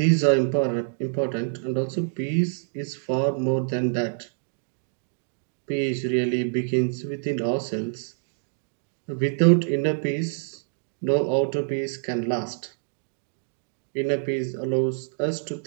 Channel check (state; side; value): silent; left; digital silence